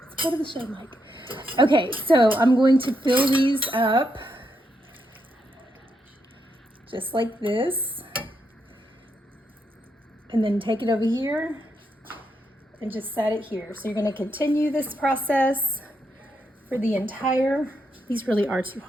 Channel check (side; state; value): both; normal; correlation 0.80